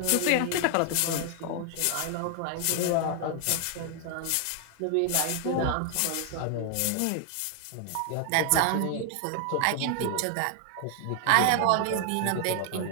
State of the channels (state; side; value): different; both; correlation 0.00